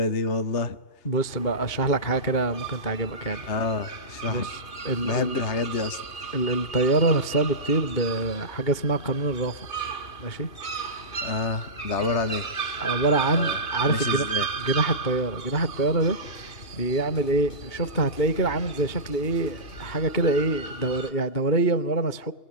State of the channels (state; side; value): late; right; 2.8 ms